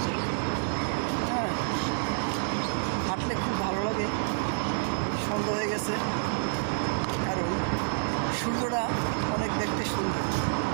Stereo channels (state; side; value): silent; left; digital silence